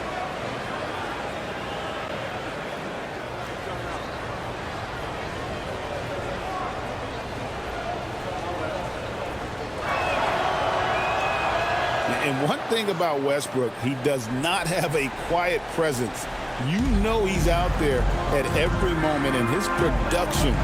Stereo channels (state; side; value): identical; both; correlation 1.00